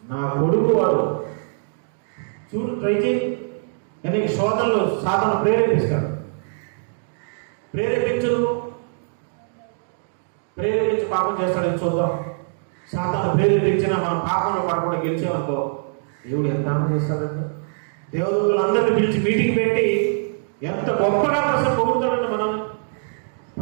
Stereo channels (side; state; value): left; silent; digital silence